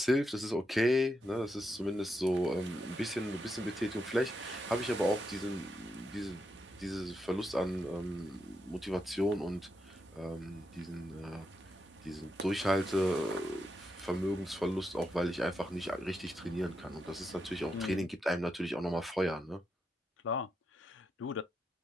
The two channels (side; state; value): both; normal; correlation 0.83